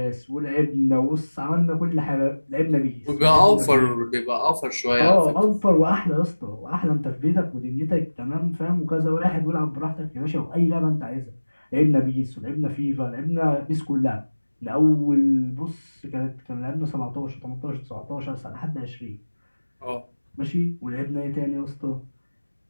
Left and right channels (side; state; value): both; inverted; correlation -1.00